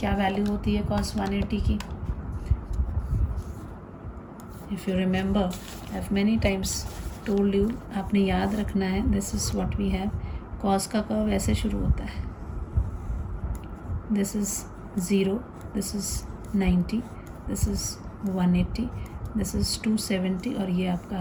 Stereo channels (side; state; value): both; identical; correlation 1.00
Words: वैल्यू होती है कॉस 180 की. If you remember, I have many times told you, आपने याद रखना है, this is what we have. Cos का कर्व ऐसे शुरू होता है, this is 0, this is 90, this is 180, this is 270 और ये आपका